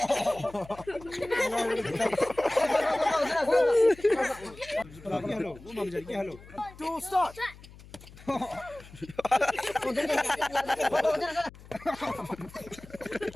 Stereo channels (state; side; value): noise; left; hum, 20 dB below the sound